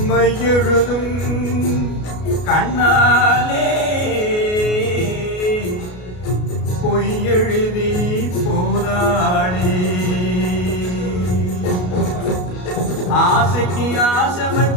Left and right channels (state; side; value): late; right; 33 ms